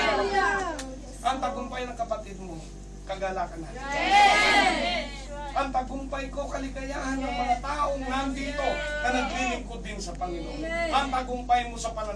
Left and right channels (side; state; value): both; identical; correlation 1.00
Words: Ang tagumpay ng kapatid mo, kagalakan natin. Ang tagumpay ko, kaligayahan ng mga taong nandito na naglilingkod din sa Panginoon. Ang tagumpay mo sa